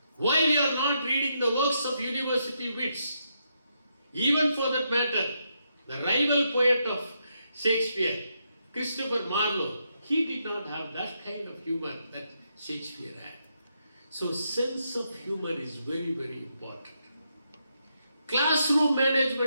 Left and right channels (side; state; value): both; inverted; correlation -0.80